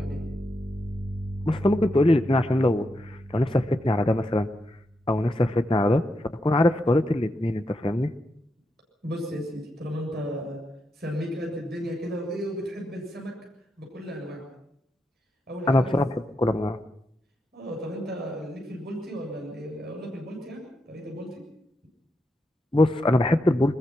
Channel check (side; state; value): both; normal; correlation 0.84